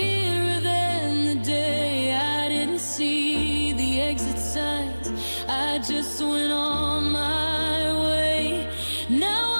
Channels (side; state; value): both; inverted; correlation -1.00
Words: than the day. I didn't see the exit signs, I just went on my way.